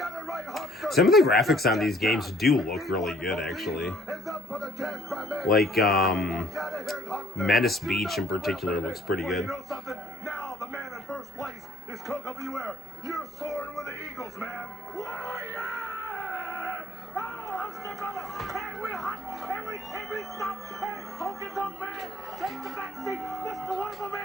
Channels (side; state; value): both; normal; correlation 0.60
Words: Some of the graphics on these games do look really good, actually. Like, Menace Beach in particular looks pretty good. You know something? Now the man in first place is Coco Beware. You're soaring with the Eagles, man. Warrior! Oh, HULKSTER brother! And we're hot! And we can't be stopped! Hey, Honky Tonk Man! Take the back seat! Mr. Wonderful